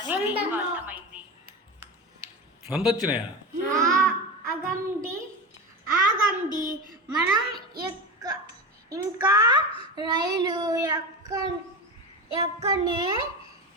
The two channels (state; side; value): normal; both; correlation 0.23